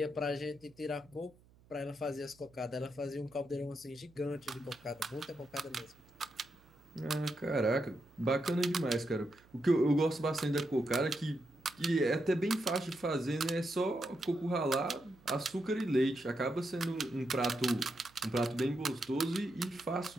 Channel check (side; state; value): right; noise; hum, 28 dB below the sound